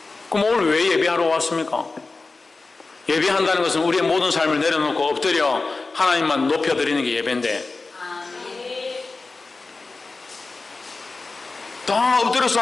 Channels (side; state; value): right; quieter; 3.7 dB